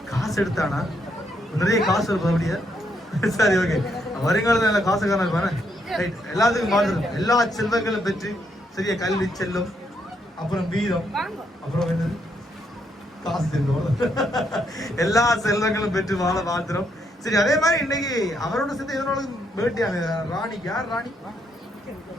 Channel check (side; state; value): both; normal; correlation 0.76